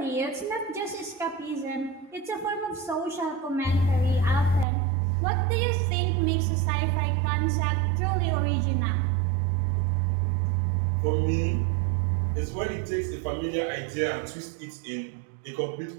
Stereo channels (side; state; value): left; drops out; at 4.7 s